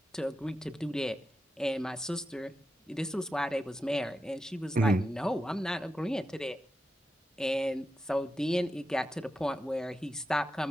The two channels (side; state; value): both; normal; correlation 0.89